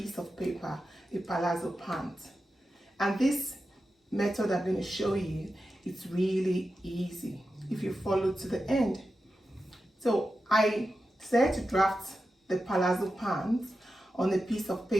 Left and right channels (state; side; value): normal; both; correlation 0.91